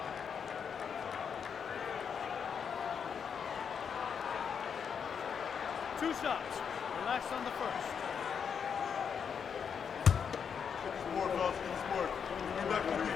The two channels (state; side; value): quieter; right; 7.0 dB